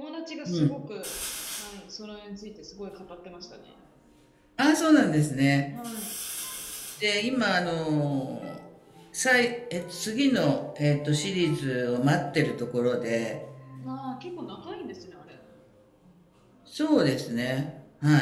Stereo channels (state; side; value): identical; both; correlation 1.00